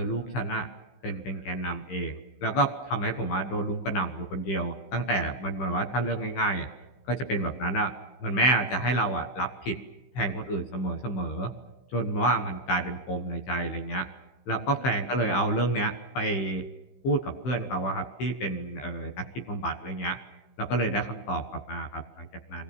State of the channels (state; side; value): late; right; 15 ms